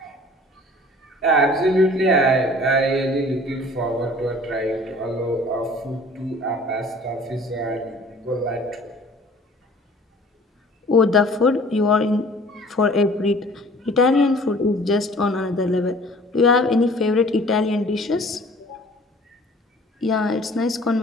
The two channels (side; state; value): both; normal; correlation 0.50